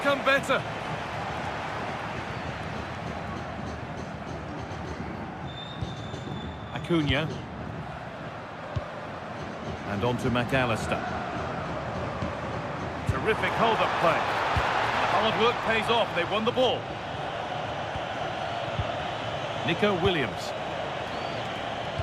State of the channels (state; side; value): identical; both; correlation 1.00